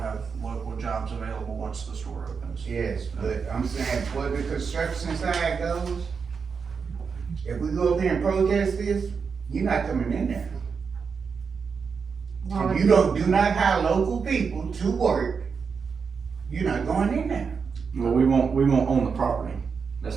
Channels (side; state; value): left; quieter; 5.7 dB